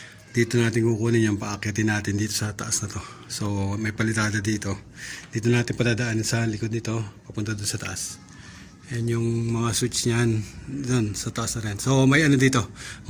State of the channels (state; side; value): identical; both; correlation 1.00